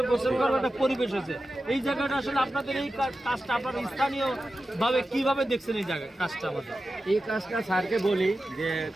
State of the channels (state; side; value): normal; both; correlation 0.92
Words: গোসল করবে, একটা পরিবেশ হয়েছে। এই জায়গাটা আসলে আপনাদের এই কাজটা আপনারা স্থানীয় ভাবে কিভাবে দেখছেন এই জায়গা কাজটা? আমাদের এই কাজটা স্যারকে বলি যে